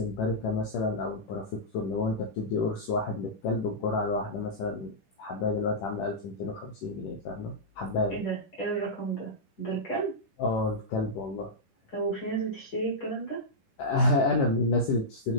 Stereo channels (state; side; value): late; right; 10 ms